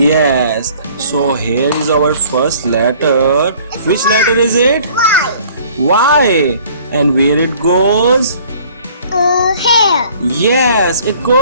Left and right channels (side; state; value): both; inverted; correlation -0.53